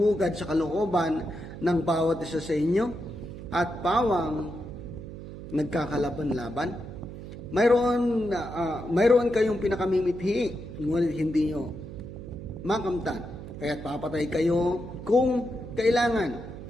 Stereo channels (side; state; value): right; noise; hum, 11 dB below the sound